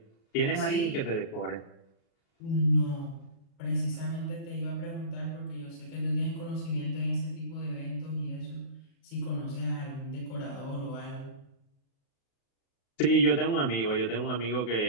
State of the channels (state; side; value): late; right; 36 ms